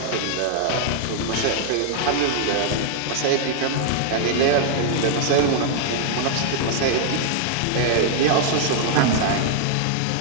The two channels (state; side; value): different; both; correlation 0.00